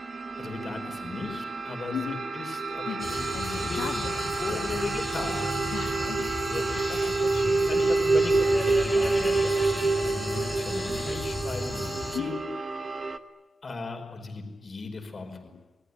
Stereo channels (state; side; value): normal; both; correlation 0.91